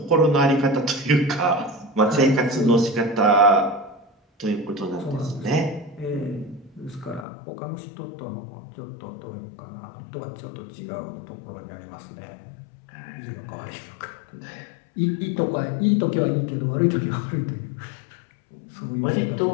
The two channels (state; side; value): drops out; right; at 7.2 s